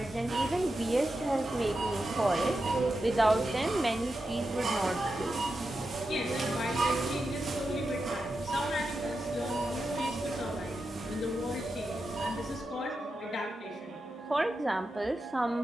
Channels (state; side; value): normal; both; correlation 0.89